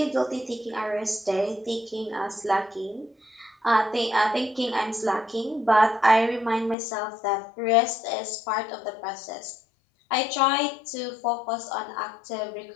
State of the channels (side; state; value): right; drops out; at 6.8 s